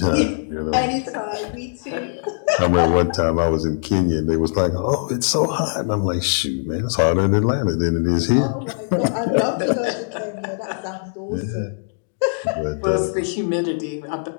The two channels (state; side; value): silent; right; digital silence